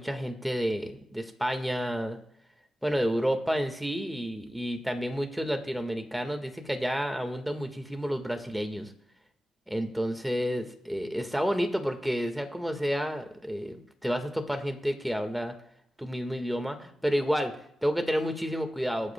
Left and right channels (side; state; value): both; normal; correlation 0.95